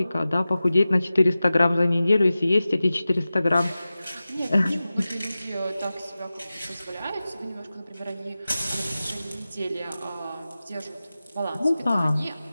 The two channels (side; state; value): both; inverted; correlation -0.95